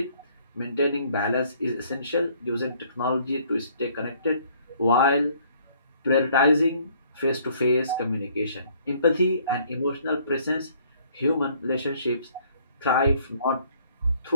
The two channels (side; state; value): both; inverted; correlation -0.61